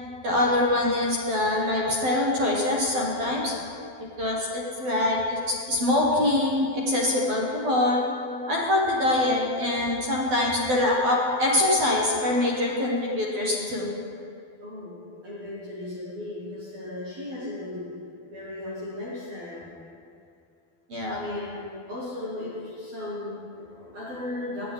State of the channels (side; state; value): left; late; 12 ms